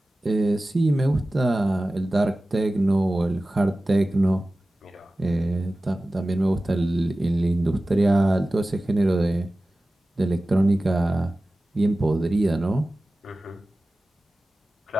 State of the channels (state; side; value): normal; both; correlation 0.96